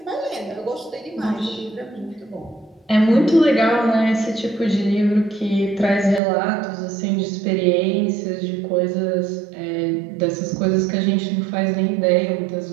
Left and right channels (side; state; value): left; drops out; at 6.2 s